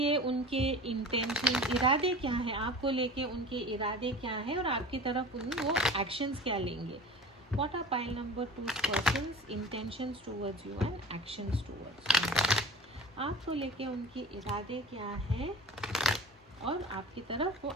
उनके इंटेंशन, इरादे क्या है, आपको लेके उनके इरादे क्या है और आपकी तरफ वो एक्शंस क्या लेंगे। What are pile number 2's person's intentions towards you and actions towards you? आपको लेके उनके इरादे क्या है और आपकी तरफ वो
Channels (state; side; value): normal; both; correlation 0.38